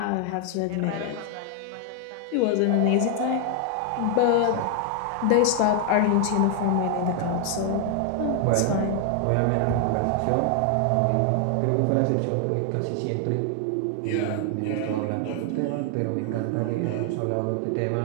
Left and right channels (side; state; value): both; different; correlation 0.00